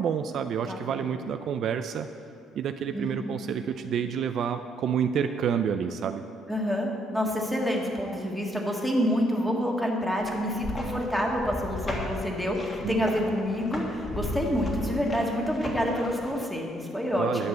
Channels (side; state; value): both; normal; correlation 0.72